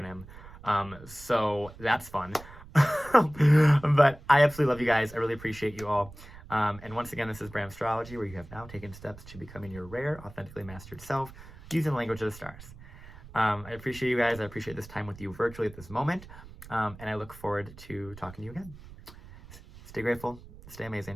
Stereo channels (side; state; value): right; noise; rumble, 18 dB below the sound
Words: So that's fun. But I absolutely love you guys. I really appreciate you all. And once again, this is BRAMstrology, where you have now taken steps to becoming your rare, authentically mastered self using the language of the stars. I appreciate you guys. I appreciate this time with you virtually at this moment. And I look forward to talking to you again. Stay grateful. Stay